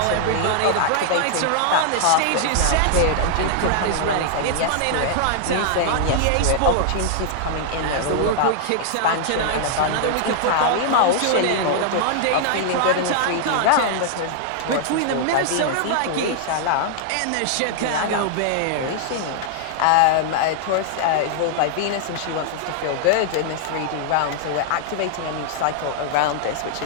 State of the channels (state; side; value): different; both; correlation -0.01